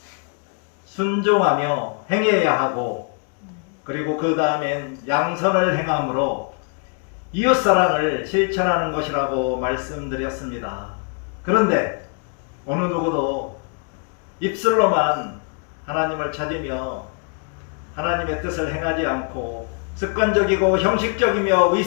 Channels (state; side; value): quieter; right; 39.2 dB